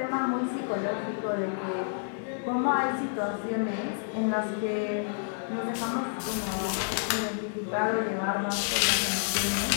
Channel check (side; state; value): right; silent; 58 dB below the other